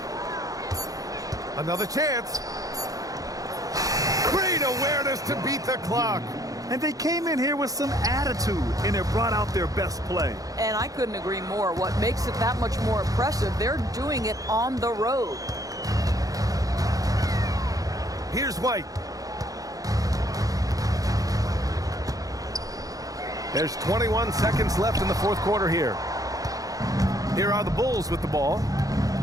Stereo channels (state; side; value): late; left; 0.17 ms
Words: Another chance. Great awareness to beat the clock. And they came in here with some attitude, and it brought out their best play. And I couldn't agree more. What makes it that much more impressive, they're doing it on the road. Here's White. There's 21 seconds left in the fourth quarter here. Here are the Bulls with the ball.